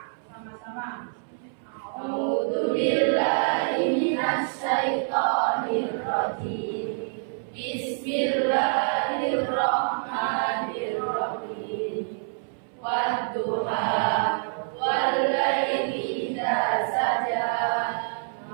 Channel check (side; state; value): left; silent; 61 dB below the other